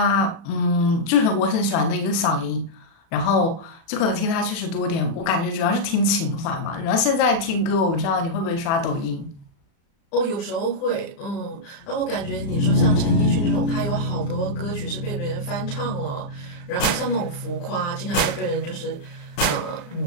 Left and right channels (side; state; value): right; late; 36 ms